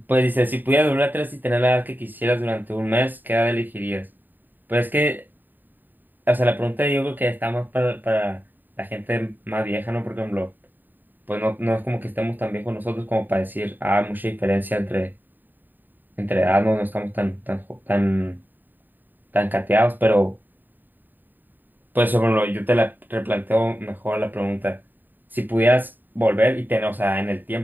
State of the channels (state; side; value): late; left; 0.090 ms